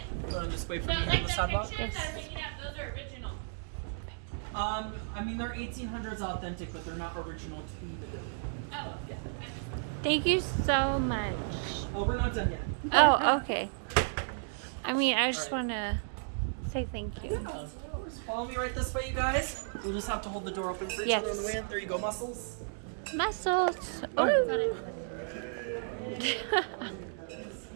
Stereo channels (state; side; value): silent; left; digital silence